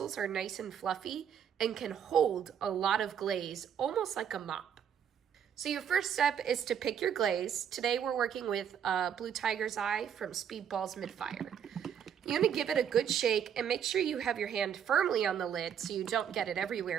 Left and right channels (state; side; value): quieter; left; 8.5 dB